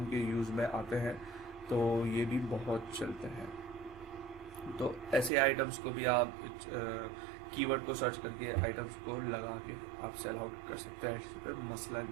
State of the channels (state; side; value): drops out; left; at 5.3 s